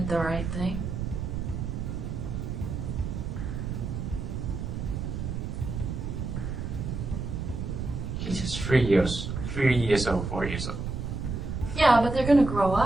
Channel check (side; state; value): right; noise; rumble, 4 dB below the sound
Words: the right thing. 3 years old, 4 years old. Yeah, but they're gonna grow